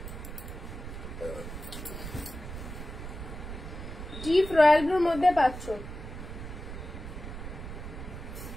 ডিপ রয়্যাল ব্লুর মধ্যে পাচ্ছ।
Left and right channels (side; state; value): right; noise; rumble, 9 dB below the sound